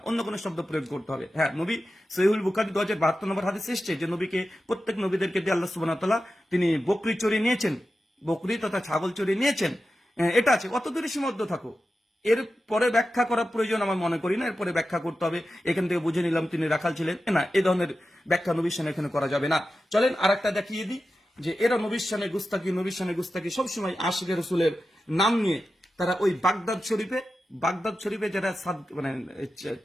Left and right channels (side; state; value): both; normal; correlation 0.92